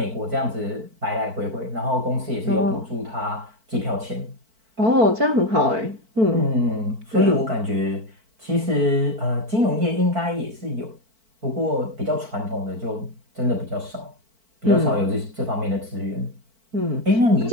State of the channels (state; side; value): late; left; 4.5 ms